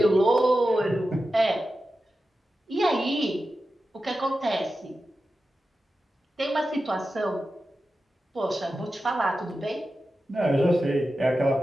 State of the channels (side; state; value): both; normal; correlation 0.92